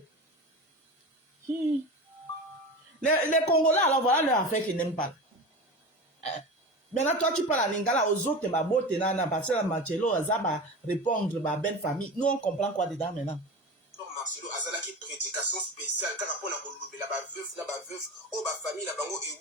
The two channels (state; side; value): normal; both; correlation 0.29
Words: Les Congolais, alors voilà leur affaire qu'ils n'aiment pas. Hein. Maintenant, toi, tu parles en lingala aux autres, ma beauté, nana, parce que Marcelo, ça va répondre, ma belle famille. Nous, on comprend quoi dedans maintenant. Marcelo azalaki prédication spéciale car pour la kolobela ba veuf o ba famille la bango